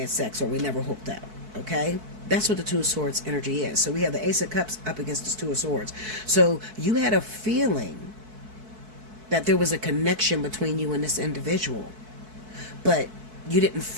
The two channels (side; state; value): left; late; 4.6 ms